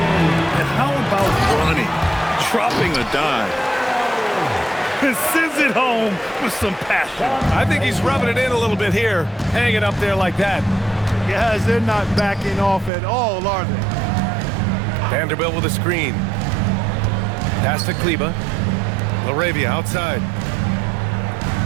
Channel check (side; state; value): left; drops out; at 12.9 s